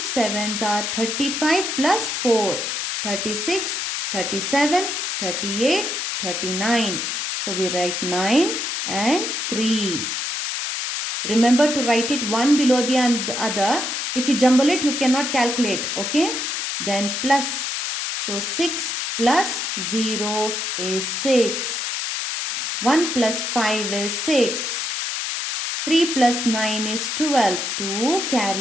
sevens are 35 plus 4. 36, 37, 38, 39. So we write 9 and 3. Remember to write it one below the other. If you jumble it, you cannot calculate. Okay. Then plus. So 6 plus 0 is 6. 1 plus 5 is 6. 3 plus 9 is 12. 2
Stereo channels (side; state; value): left; noise; hiss, 2 dB below the sound